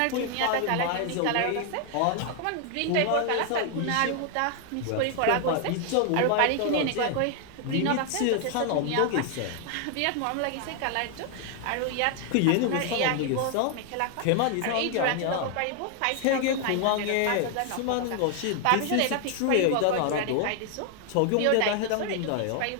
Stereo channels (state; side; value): different; both; correlation 0.00